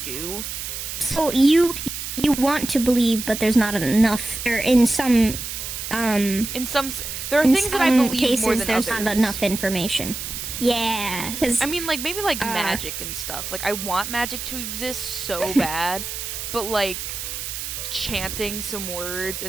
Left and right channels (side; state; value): right; noise; hiss, 6 dB below the sound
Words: So you want to believe, but there's not enough, or in some there are things that I believe cases, more than there's others. Not enough information. Yeah, I mean, maybe magic and stuff. I want magic to exist so bad, but chanting some words